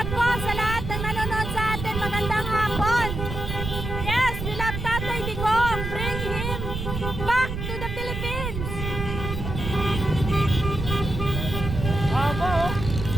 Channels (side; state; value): right; noise; rumble, 5 dB below the sound